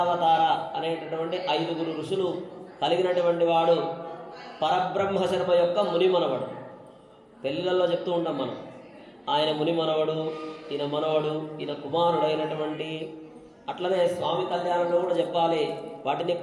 అనేటటువంటి 5 ఋషులు కలిగినటువంటి వాడు. పరబ్రహ్మ శర్మ యొక్క ముని మనవడు. పెళ్ళిళ్ళల్లో చెప్తూ ఉంటాం మనం, ఆయన ముని మనవడు, ఈయన మనవడు, ఈయన కుమారుడైనటువంటి. అట్లనే స్వామి కళ్యాణంలో కూడా చెప్పాలి, వాటిని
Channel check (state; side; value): identical; both; correlation 1.00